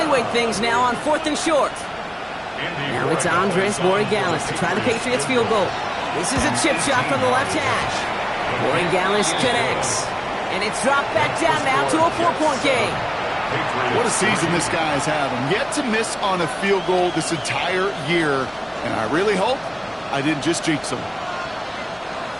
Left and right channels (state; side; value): identical; both; correlation 1.00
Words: things now on 4th and short. Now it's Andres Borregales to try the Patriots field goal. This is a chip shot from the left hash. Borregales connects. And it's dropped back down now to a 4-point game. What a season this guy is having. Yet to miss on a field goal this entire year. And I really hope I didn't just jinx him.